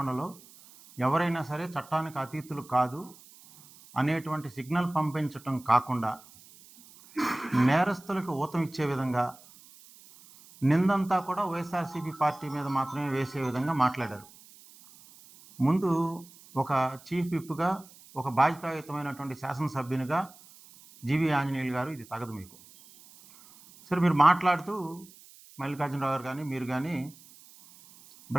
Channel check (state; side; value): noise; right; hiss, 23 dB below the sound